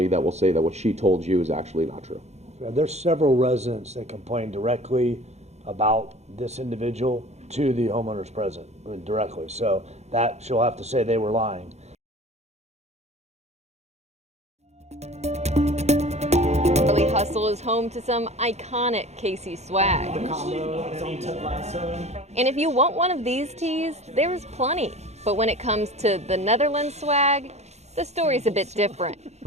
that will say that what she told you is actually not true. There's several residents that complain directly about this individual to the homeowner's president, directly. So that she'll have to say they were lying. Charlie Hustle is home to some iconic Casey swag. And if you want one of these tees, there's plenty. But when it comes to the Netherlands swag, the story's a bit different.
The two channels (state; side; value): late; left; 0.32 ms